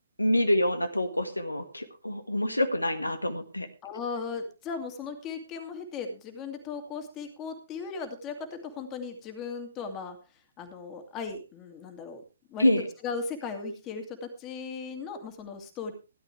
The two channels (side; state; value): both; inverted; correlation -0.76